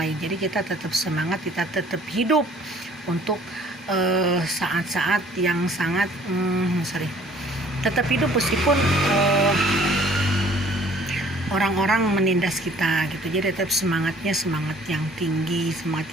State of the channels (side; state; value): both; normal; correlation 0.56